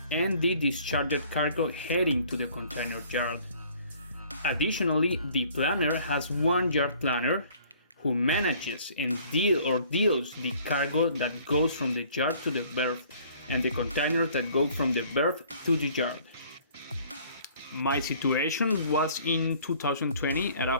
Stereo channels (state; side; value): inverted; both; correlation -0.56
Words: and the discharged cargo heading to the container yard. Additionally, the planner has one yard planner who manages and deals the cargo that goes from the yard to the berth and the containers that go from the berth to the yard. My situation was in 2020 at a